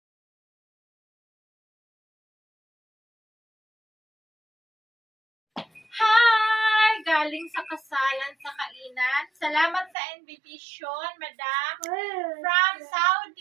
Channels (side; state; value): left; drops out; at 9.9 s